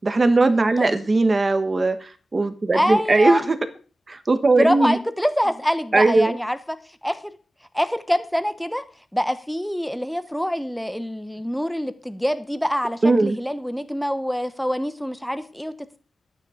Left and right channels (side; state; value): both; normal; correlation 0.97